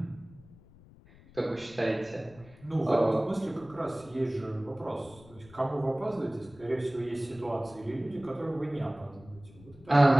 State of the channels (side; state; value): left; noise; rumble, 22 dB below the sound